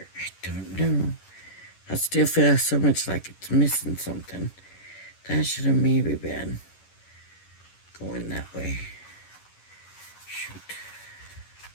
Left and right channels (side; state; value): right; late; 11 ms